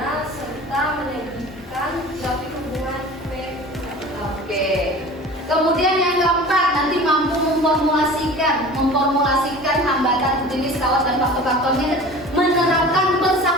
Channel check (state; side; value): normal; both; correlation 0.39